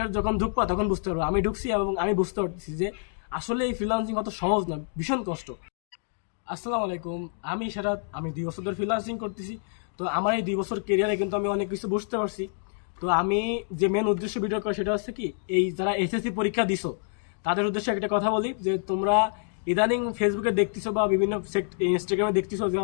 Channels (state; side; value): silent; right; digital silence